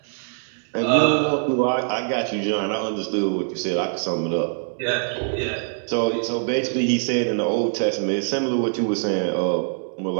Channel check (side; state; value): left; silent; 63 dB below the other